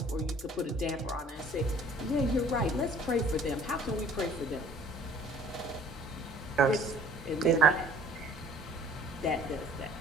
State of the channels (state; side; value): normal; both; correlation 0.52